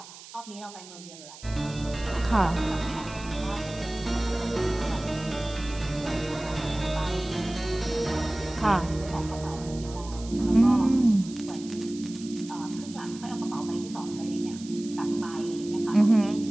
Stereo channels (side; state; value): right; noise; hiss, 17 dB below the sound